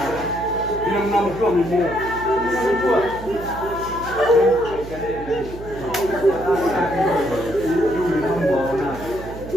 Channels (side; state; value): right; noise; hum, 12 dB below the sound